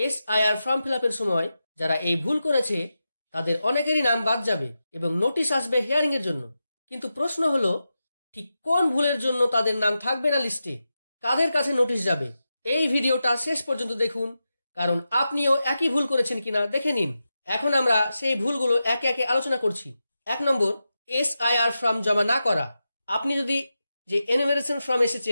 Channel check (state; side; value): inverted; both; correlation -0.90